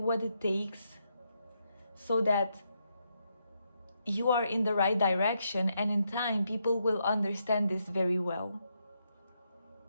it takes so that you are in the right direction, and in time people will understand this very well.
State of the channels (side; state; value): both; inverted; correlation -0.80